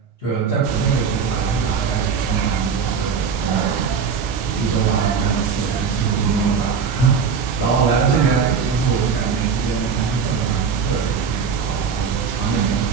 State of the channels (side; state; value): left; quieter; 6.1 dB